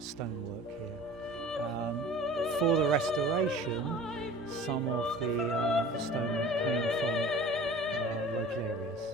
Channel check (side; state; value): both; normal; correlation 0.43